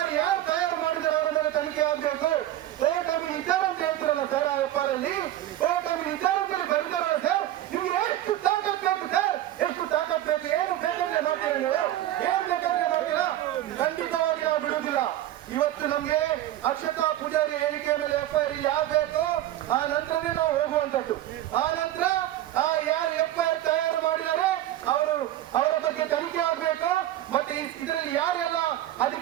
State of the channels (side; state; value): left; quieter; 13.4 dB